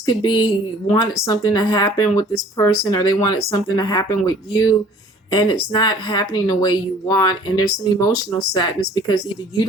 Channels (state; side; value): normal; both; correlation 0.52